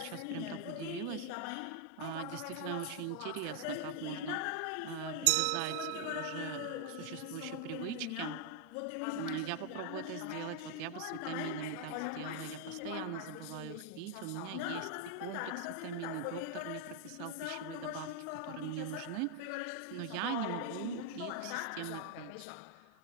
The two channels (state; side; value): different; both; correlation 0.00